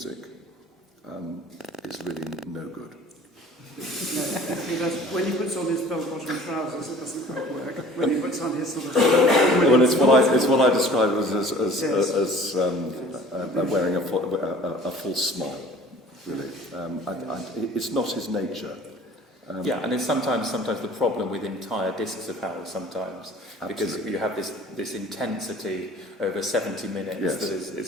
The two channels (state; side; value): normal; both; correlation 0.48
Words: is really no good. When he puts on his bell-bottom trousers, it doesn't quite work. When he puts on his sort of... Well, it's what I describe as wearing a false smile, really. It's not his nature. And it's sometimes the problem with entire discs of Howells sometimes, because you have this intensity over 70 minutes that